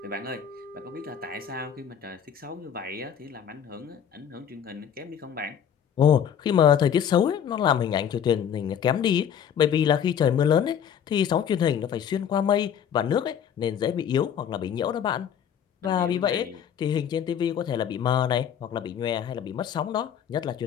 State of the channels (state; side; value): quieter; right; 8.6 dB